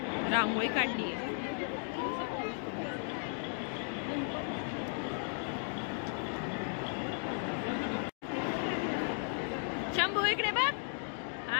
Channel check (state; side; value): silent; right; 54 dB below the other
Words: रांगोळी काढली. शंभू इकडे बघ.